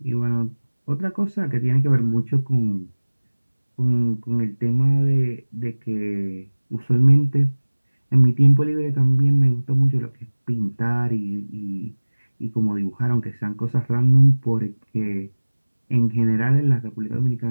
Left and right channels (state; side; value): inverted; both; correlation -1.00